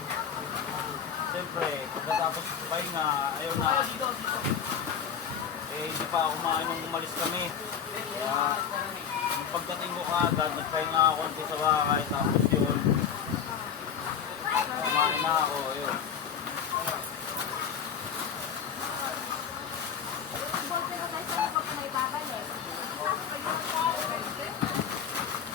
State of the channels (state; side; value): quieter; right; 7.7 dB